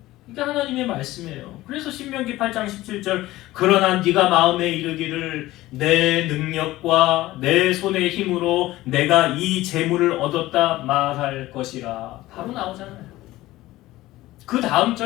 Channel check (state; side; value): quieter; right; 17.0 dB